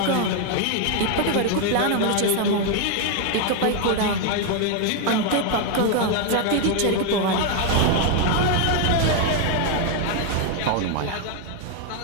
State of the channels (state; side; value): different; both; correlation 0.01